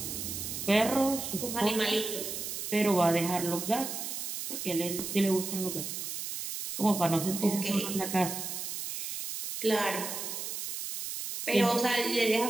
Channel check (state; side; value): noise; right; hiss, 5 dB below the sound